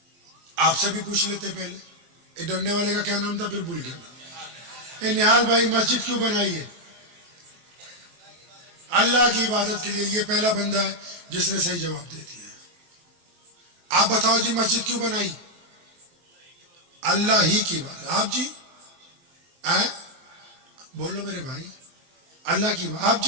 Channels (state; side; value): late; left; 23 ms